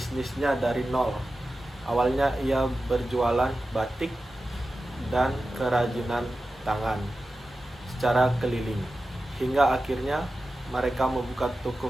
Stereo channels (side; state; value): both; normal; correlation 0.93